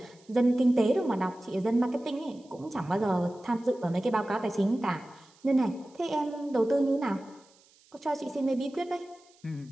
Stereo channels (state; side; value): noise; right; hiss, 30 dB below the sound